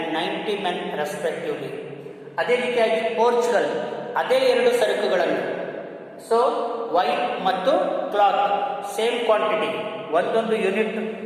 90 men respectively. ಅದೇ ರೀತಿಯಾಗಿ ಪೋರ್ಚುಗಲ್ ಅದೇ ಎರಡು ಸರಕುಗಳನ್ನು, ಸೊ ವೈನ್ ಮತ್ತು ಕ್ಲಾತ್ ಸೇಮ್ ಕ್ವಾಂಟಿಟಿ, ಒಂದೊಂದು ಯೂನಿಟ್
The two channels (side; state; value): both; identical; correlation 1.00